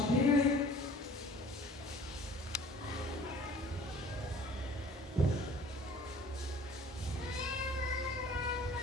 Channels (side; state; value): both; normal; correlation 0.49